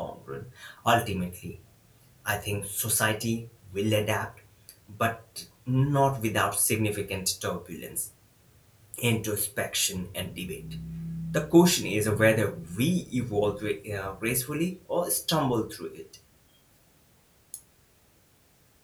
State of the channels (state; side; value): identical; both; correlation 1.00